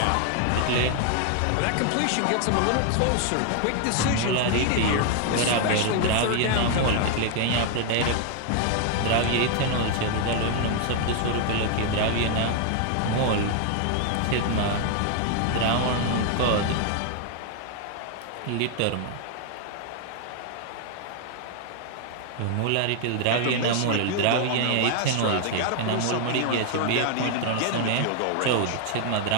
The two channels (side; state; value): both; different; correlation 0.00